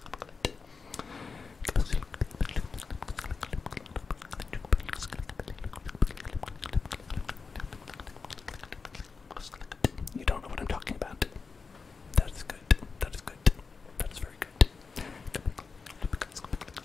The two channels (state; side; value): quieter; right; 4.8 dB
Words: You don't know what I'm talking about. That is good. That is good. That is very good.